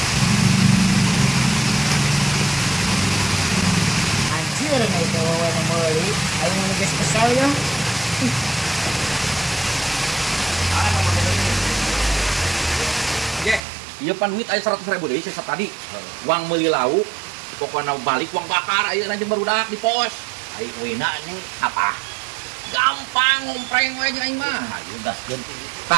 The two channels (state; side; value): drops out; left; at 13.6 s